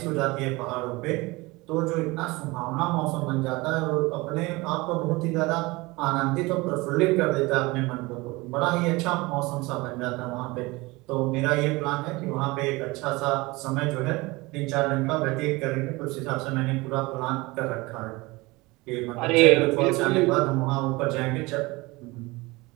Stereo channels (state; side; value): quieter; left; 22.8 dB